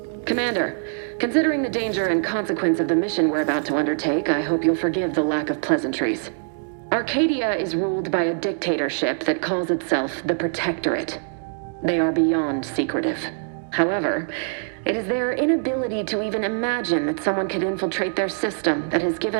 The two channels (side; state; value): left; silent; digital silence